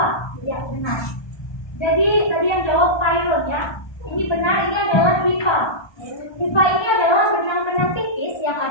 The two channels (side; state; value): right; late; 1.2 ms